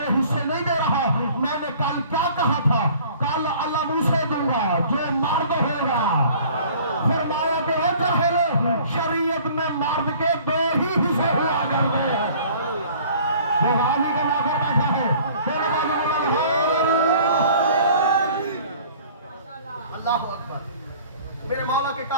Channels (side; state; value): both; inverted; correlation -0.51